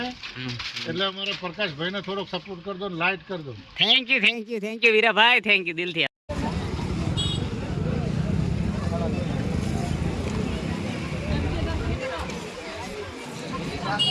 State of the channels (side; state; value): both; identical; correlation 1.00